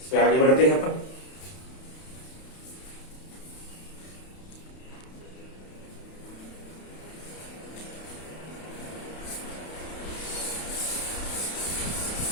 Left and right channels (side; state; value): right; late; 31 ms